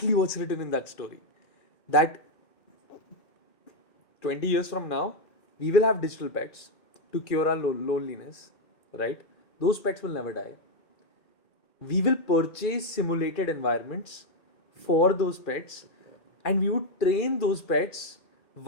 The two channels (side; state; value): right; late; 2.4 ms